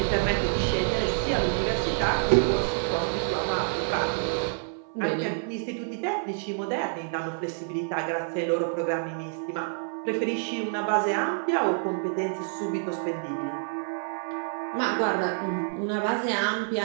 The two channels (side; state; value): left; silent; 60 dB below the other